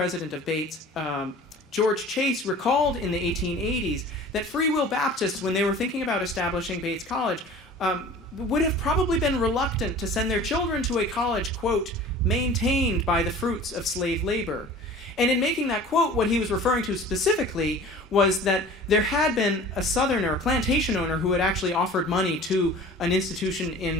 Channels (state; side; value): normal; both; correlation 0.43